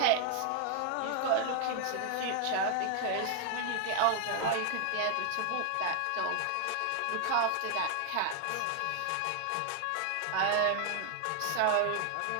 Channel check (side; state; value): both; different; correlation 0.00